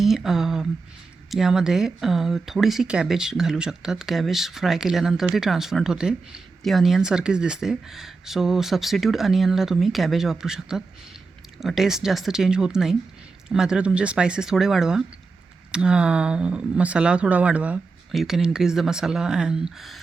यामध्ये थोडीशी कॅबेज घालू शकतात. कॅबेज फ्राय केल्यानंतर ती ट्रान्सपरंट होते, ती अनियनसारखीच दिसते. सो सबस्टिट्यूट अनियनला तुम्ही कॅबेज वापरू शकतात. टेस्ट जास्त चेंज होत नाही. मात्र तुमचे स्पायसेस थोडे वाढवा, मसाला थोडा वाढवा. You can increase the masala and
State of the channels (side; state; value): left; quieter; 4.1 dB